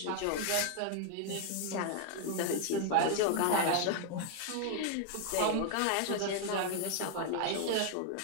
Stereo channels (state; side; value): different; both; correlation 0.00